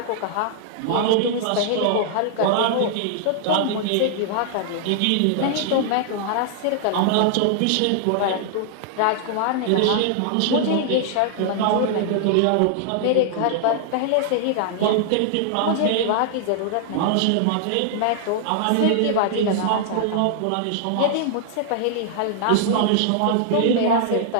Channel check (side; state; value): both; different; correlation -0.01